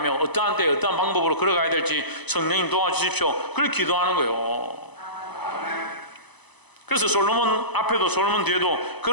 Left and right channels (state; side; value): late; right; 1.0 ms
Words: 어떠한 때에 어떠한 방법으로 걸어가야 될지 성령님 도와주십시오. 그걸 기도하는 거예요. 그래서 솔로몬 앞에도 솔로몬 뒤에도